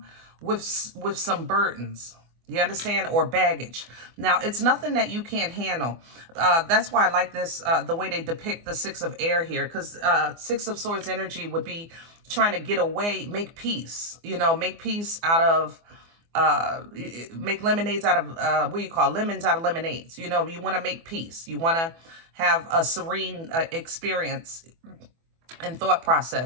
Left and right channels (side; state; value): left; late; 24 ms